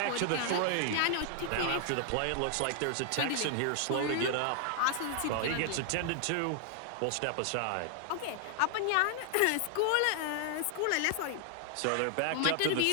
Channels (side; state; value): both; different; correlation 0.00